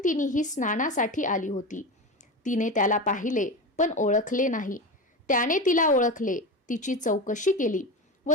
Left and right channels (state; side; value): normal; both; correlation 0.23